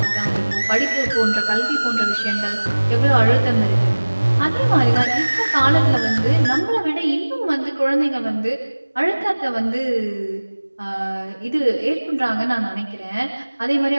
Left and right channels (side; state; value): both; inverted; correlation -1.00